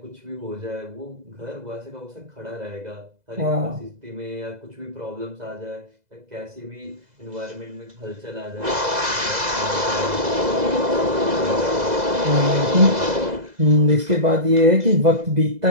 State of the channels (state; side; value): late; left; 2.0 ms